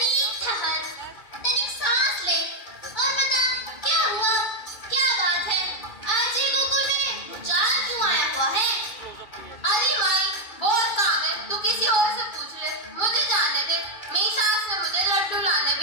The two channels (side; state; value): right; late; 2.3 ms